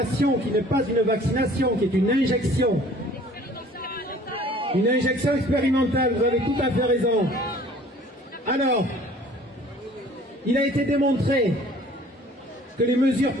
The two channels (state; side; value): normal; both; correlation 0.52